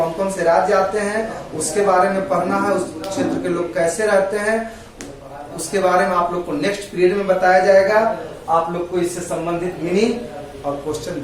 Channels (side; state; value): both; identical; correlation 1.00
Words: कौन से राज्य आते हैं, उसके बारे में पढ़ना है। उस क्षेत्र के लोग कैसे रहते हैं, उसके बारे में आप लोग को नेक्स्ट पीरियड में बताया जाएगा। आप लोग को इससे संबंधित मीनिंग और क्वेश्चन